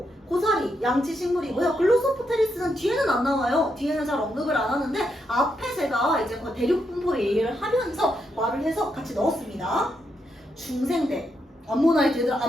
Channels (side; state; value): both; normal; correlation 0.81